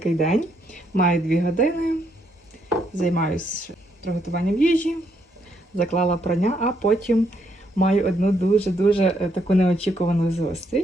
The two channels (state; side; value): normal; both; correlation 0.74